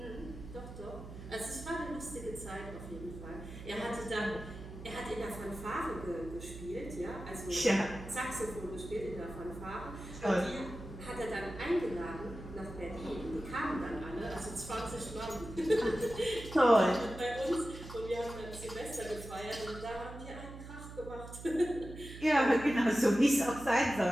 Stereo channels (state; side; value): noise; right; hum, 12 dB below the sound